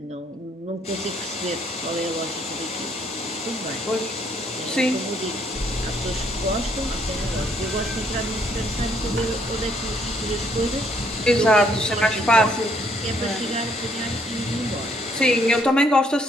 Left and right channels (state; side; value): normal; both; correlation 0.68